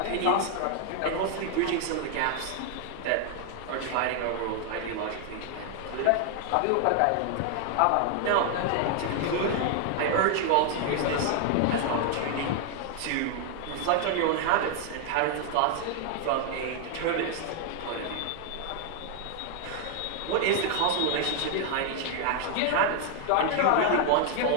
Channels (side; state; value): both; different; correlation 0.00